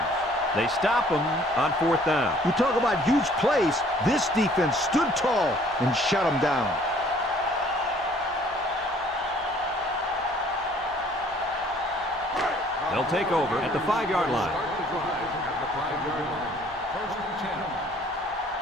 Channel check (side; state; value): both; normal; correlation 0.57